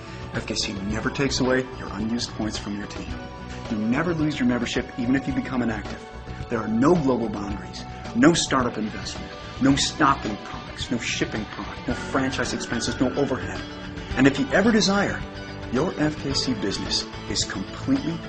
FKC never takes away your unused points from your team. You never lose your membership even if you become inactive. There are no global boundaries, no startup investment, no stocking products, no shipping product, no franchise expenses, no overhead. And if you ever desire, your FKC business is completely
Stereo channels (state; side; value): identical; both; correlation 1.00